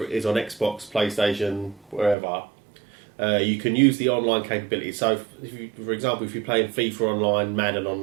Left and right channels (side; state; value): left; drops out; at 2.1 s